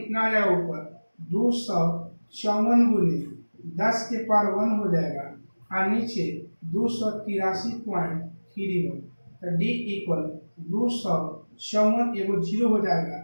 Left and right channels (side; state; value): both; inverted; correlation -1.00